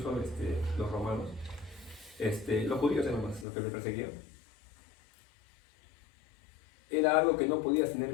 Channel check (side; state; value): right; drops out; at 3.5 s